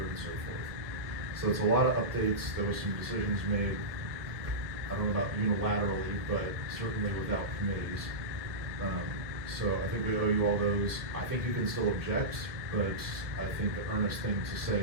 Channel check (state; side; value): late; left; 1.4 ms